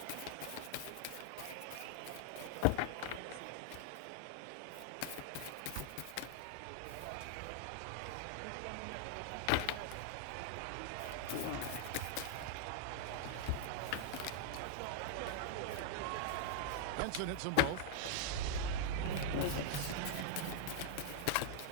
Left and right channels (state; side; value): different; both; correlation 0.00